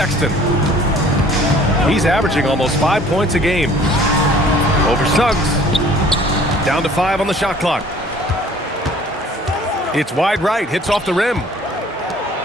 He's averaging almost 5 points a game. Over Suggs. Down to 5 on the shot clock. It's wide right, hits off the rim.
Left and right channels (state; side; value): normal; both; correlation 0.53